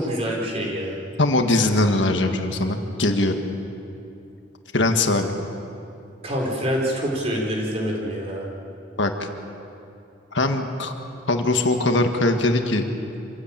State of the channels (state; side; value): normal; both; correlation 0.41